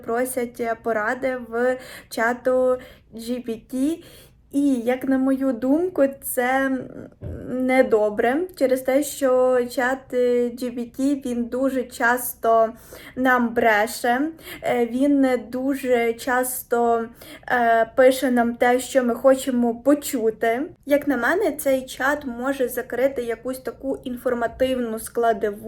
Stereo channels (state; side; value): identical; both; correlation 1.00